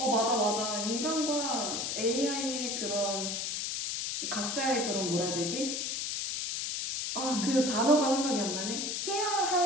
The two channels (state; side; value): noise; left; hiss, 2 dB below the sound